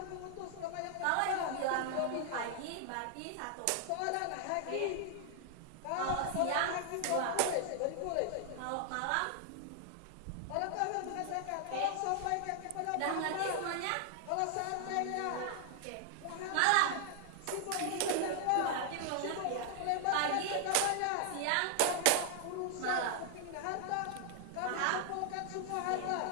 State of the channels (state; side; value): different; both; correlation 0.00